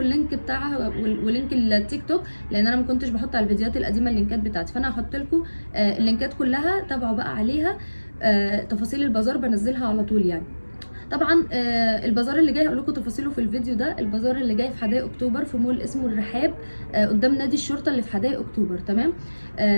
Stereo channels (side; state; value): both; inverted; correlation -1.00